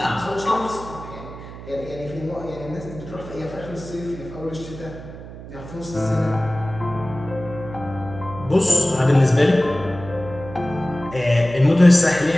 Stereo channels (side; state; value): right; noise; hum, 14 dB below the sound